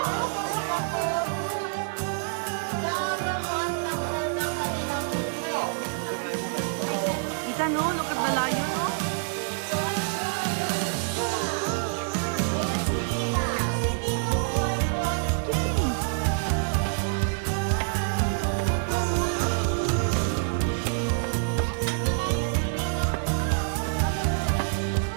Ita, no? Look at the lion, no?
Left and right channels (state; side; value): silent; left; digital silence